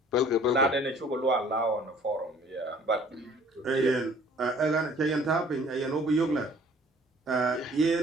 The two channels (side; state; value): both; normal; correlation 0.54